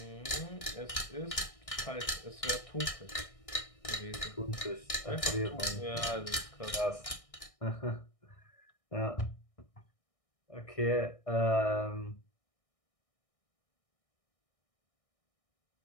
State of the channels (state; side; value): late; right; 1.6 ms